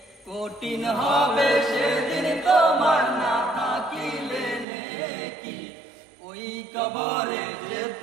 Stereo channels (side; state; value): left; drops out; at 4.7 s